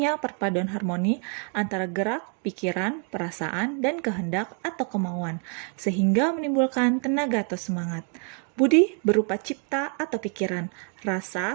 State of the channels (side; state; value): left; quieter; 38.7 dB